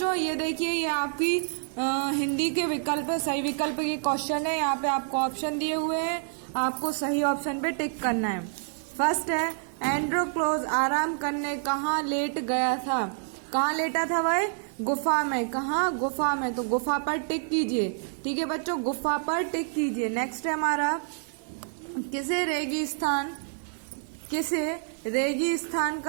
ये देखिए, ये आपकी हिंदी के विकल्प है. सही विकल्प के क्वेश्चन है. यहाँ पे आपको ऑप्शन दिए हुए हैं, आपको सही ऑप्शन पे टिक करना है. फर्स्ट है, एंड्रोक्लोज आराम करने कहाँ लेट गया था. कहाँ लेटा था भाई? गुफा में. कहाँ? गुफा में. तो गुफा पर टिक कीजिए. ठीक है बच्चों, गुफा पर टिक कीजिए. नेक्स्ट है हमारा, किसे रेगिस्तान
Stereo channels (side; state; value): left; silent; digital silence